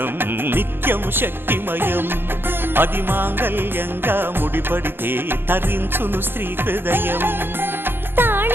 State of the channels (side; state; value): left; late; 0.10 ms